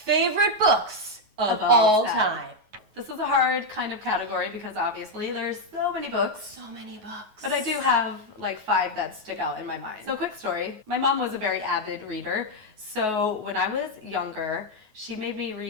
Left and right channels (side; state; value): left; late; 9.4 ms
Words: books of all time. This is a hard kind of category because obviously there's so many books. So many books. But I do have like 5 that stick out in my mind. So quick story. My mom was a very avid reader. So when I was younger, she made me